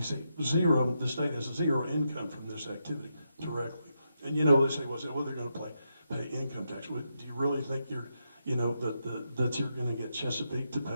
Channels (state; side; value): inverted; both; correlation -0.83